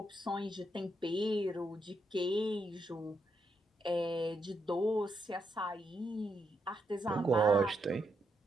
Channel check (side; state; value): both; normal; correlation 0.81